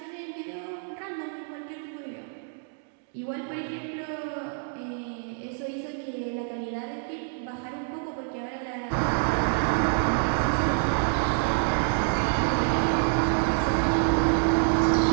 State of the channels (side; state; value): left; silent; 60 dB below the other